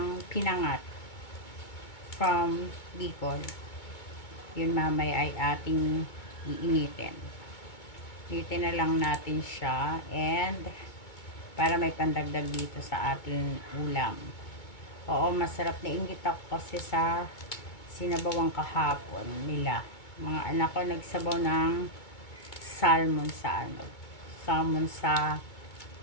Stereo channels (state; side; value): late; right; 2.2 ms